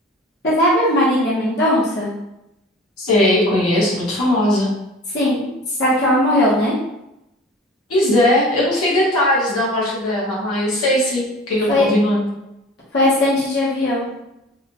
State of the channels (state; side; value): normal; both; correlation 0.41